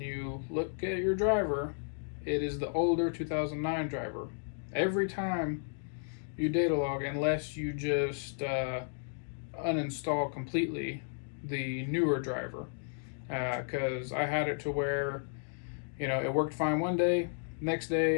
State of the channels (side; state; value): right; silent; digital silence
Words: look at your driver, it is the older 2009 driver. Every time you data log, unless you just uninstall completely the newer driver, because I had it to where, you know, it worked fine one day, next